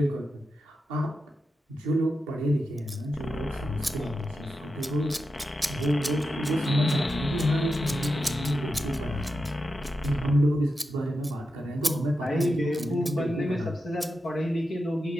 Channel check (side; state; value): both; normal; correlation 0.89